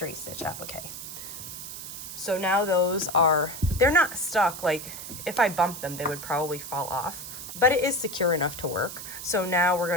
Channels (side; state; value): right; noise; hiss, 10 dB below the sound